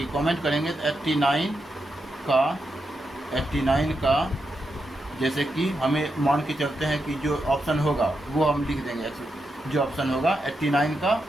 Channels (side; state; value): both; normal; correlation 0.85